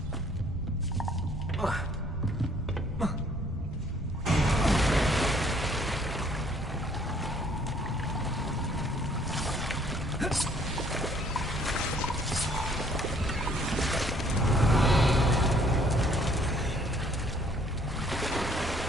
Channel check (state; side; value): normal; both; correlation 0.62